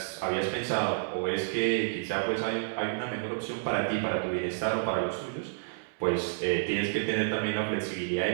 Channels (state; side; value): silent; left; 58 dB below the other